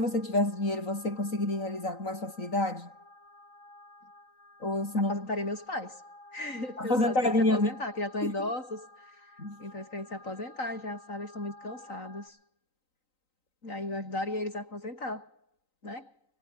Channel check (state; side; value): late; right; 3.9 ms